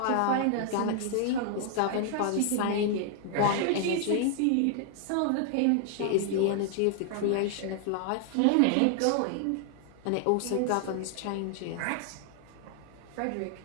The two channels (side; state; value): both; different; correlation 0.00